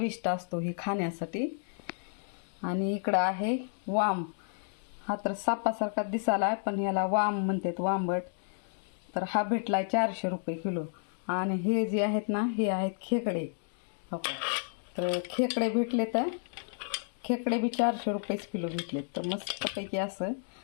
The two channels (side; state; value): right; silent; digital silence